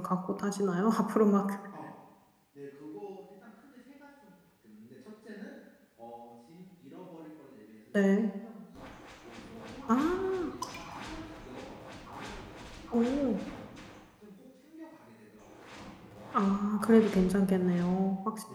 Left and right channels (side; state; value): both; identical; correlation 1.00